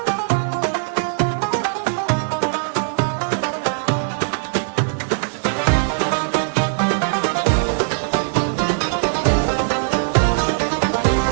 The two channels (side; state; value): left; silent; digital silence